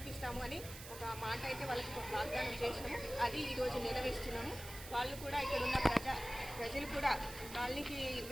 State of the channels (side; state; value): right; noise; hiss, 12 dB below the sound